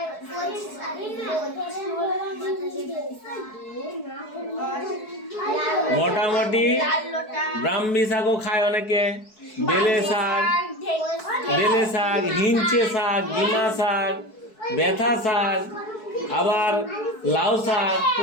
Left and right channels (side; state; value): right; late; 4.6 ms